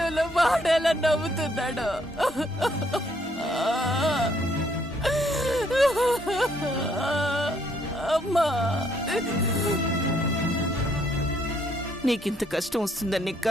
వాడేలా నవ్వుతున్నాడు. అమ్మా, నీకింత కష్టం వస్తుందని నీ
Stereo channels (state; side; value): normal; both; correlation 0.69